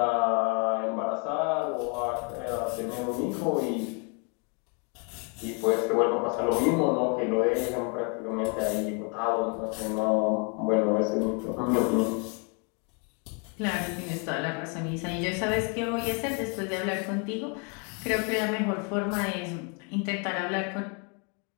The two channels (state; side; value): quieter; right; 35.3 dB